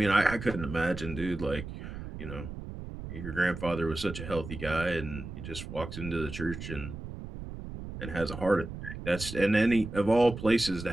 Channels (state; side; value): noise; right; rumble, 9 dB below the sound